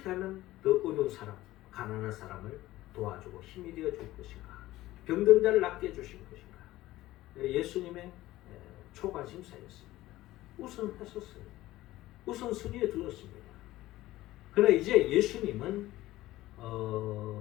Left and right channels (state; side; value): quieter; right; 16.4 dB